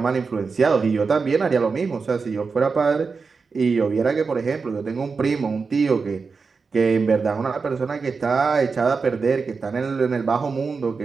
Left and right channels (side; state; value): left; quieter; 4.8 dB